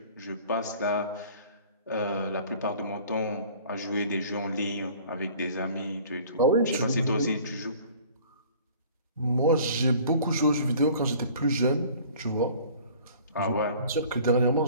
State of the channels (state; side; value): inverted; both; correlation -0.49